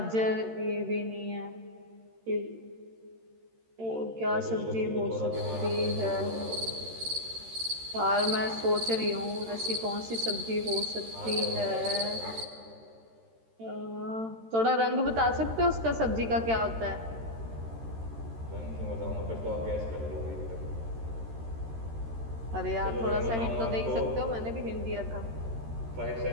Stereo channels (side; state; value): left; late; 13 ms